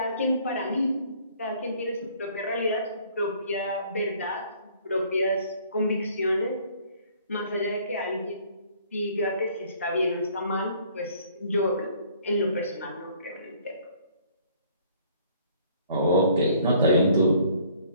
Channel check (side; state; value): both; inverted; correlation -0.58